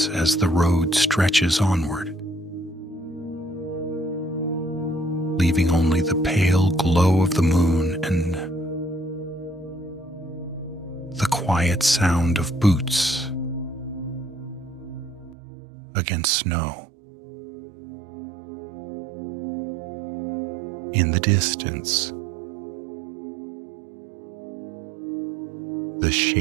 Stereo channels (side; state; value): left; drops out; at 15.4 s